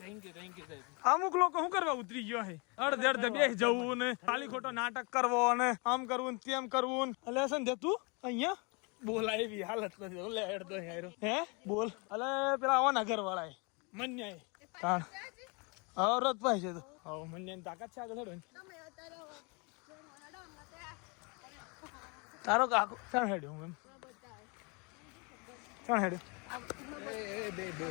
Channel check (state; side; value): quieter; right; 31.3 dB